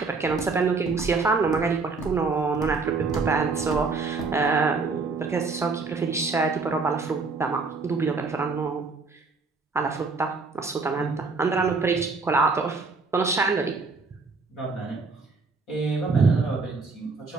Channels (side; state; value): left; quieter; 4.1 dB